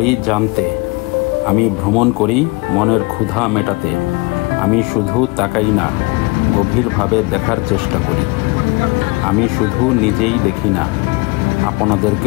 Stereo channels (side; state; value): right; quieter; 26.0 dB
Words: জানতে, আমি ভ্রমণ করি মনের ক্ষুধা মেটাতে। আমি শুধু তাকাই না, গভীরভাবে দেখার চেষ্টা করি। আমি শুধু নিজেই দেখি না,